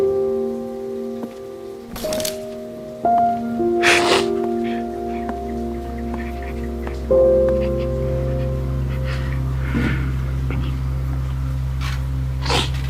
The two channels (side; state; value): both; identical; correlation 1.00